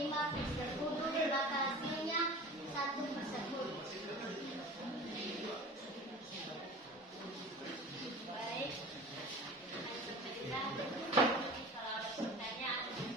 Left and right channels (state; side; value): normal; both; correlation 0.39